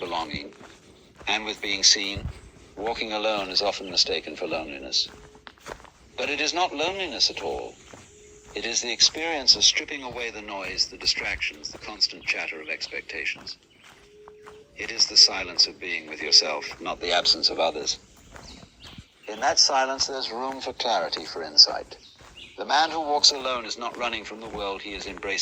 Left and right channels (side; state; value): both; identical; correlation 1.00